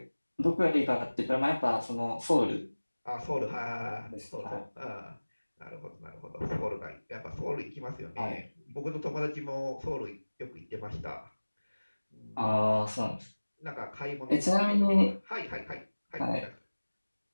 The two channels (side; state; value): both; inverted; correlation -1.00